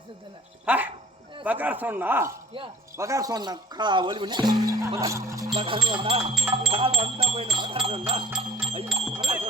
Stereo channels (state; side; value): normal; both; correlation 0.51